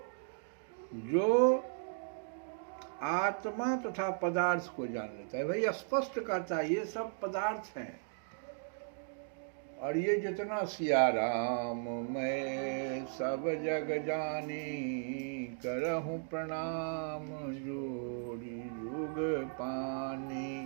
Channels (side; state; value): left; silent; digital silence